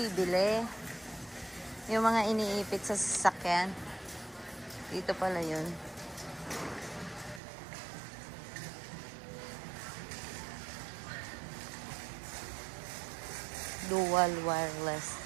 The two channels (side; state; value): left; drops out; at 7.4 s